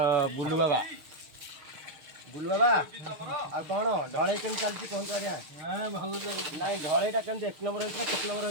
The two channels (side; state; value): left; late; 6.5 ms